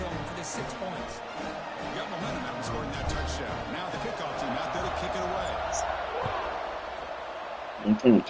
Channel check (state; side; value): identical; both; correlation 1.00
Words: for the 6 points. Got momentum out and scoring that touchdown. Now the kickoff team out there to kick it away. I'm playing